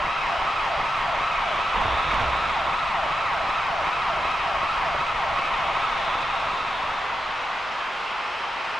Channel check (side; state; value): both; normal; correlation 0.88